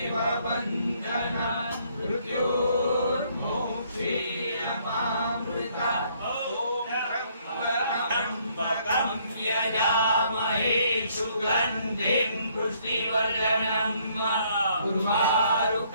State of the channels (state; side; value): inverted; both; correlation -0.66